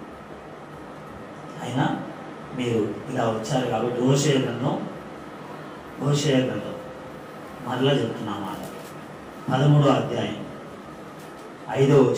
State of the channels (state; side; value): identical; both; correlation 1.00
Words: అయినా మీరు ఇలా వచ్చారు కాబట్టి హోషేయ గ్రంథం మరలా చెప్తున్నా మాట 13వ అధ్యాయం 5వ